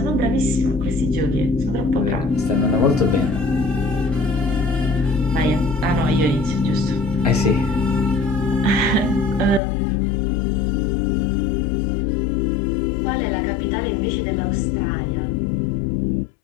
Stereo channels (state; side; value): drops out; right; at 9.6 s